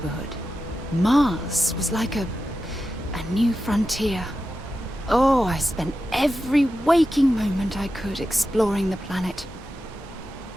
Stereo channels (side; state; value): both; normal; correlation 0.91